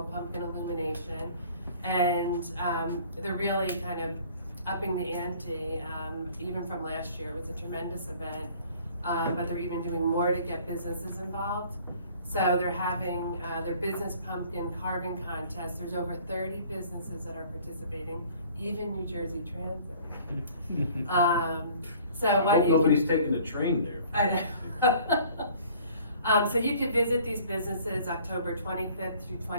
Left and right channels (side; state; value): both; inverted; correlation -0.53